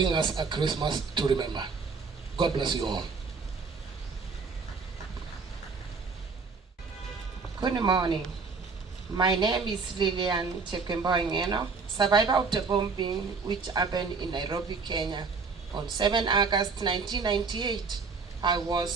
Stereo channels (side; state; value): left; quieter; 4.7 dB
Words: us a Christmas to remember. God bless you all. Good morning. My name is Lilian Ngeno, survivor of the bombing which happened in Nairobi, Kenya on 7 August 1998.